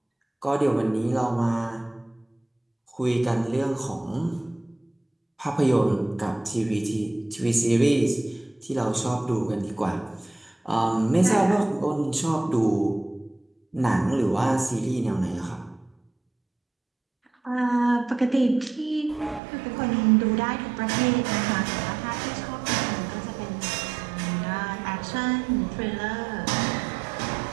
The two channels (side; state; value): left; drops out; at 19.4 s